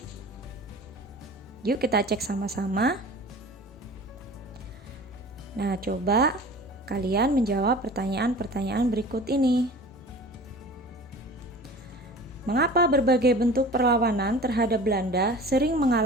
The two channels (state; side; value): normal; both; correlation 0.40